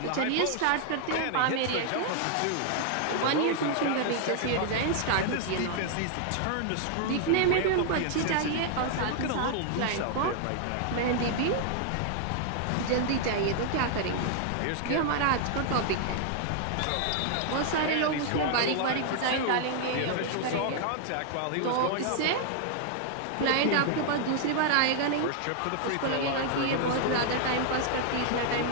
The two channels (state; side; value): different; both; correlation 0.00